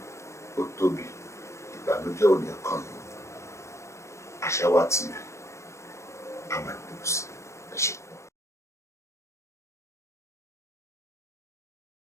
ó tóbi ìbànújẹ́ ò ní kàn yín. Àṣàwá TV a máa gbé sí i.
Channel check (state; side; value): late; right; 0.14 ms